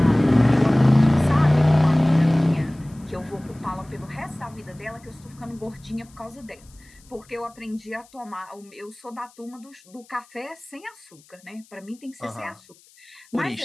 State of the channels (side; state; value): left; noise; hiss, 28 dB below the sound